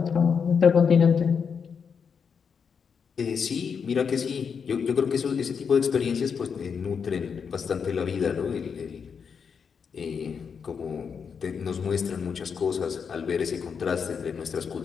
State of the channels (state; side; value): quieter; right; 6.4 dB